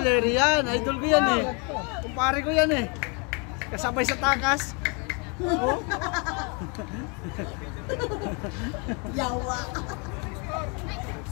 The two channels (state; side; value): quieter; right; 33.4 dB